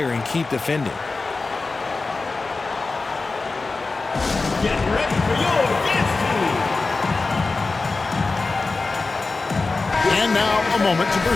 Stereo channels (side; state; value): right; quieter; 3.8 dB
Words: and keep defending. Get ready for your dance team. And now a moment to